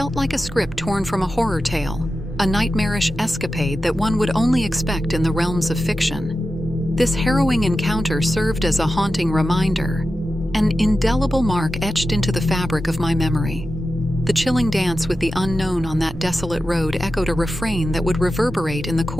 like a script torn from a horror tale, a nightmarish escapade that one would only expect in the realms of fiction. This harrowing encounter served as a haunting reminder, an indelible mark etched into the fabric of my memory. The chilling dance with the unknown on that desolate road echoed a refrain that would reverberate in the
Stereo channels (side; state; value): both; normal; correlation 0.92